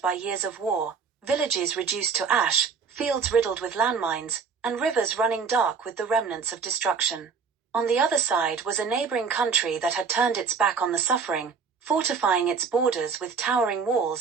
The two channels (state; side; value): quieter; left; 5.7 dB